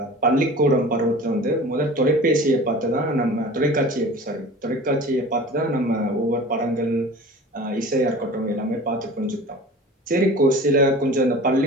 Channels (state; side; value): normal; both; correlation 0.40